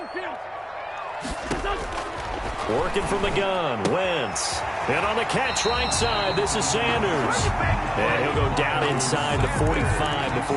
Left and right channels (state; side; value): identical; both; correlation 1.00